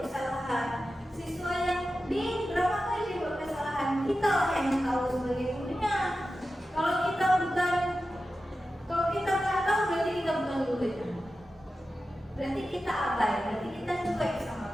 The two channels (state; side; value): normal; both; correlation 0.93